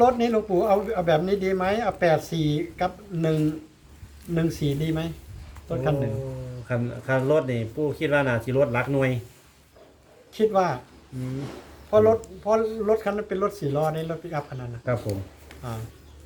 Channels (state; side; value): identical; both; correlation 1.00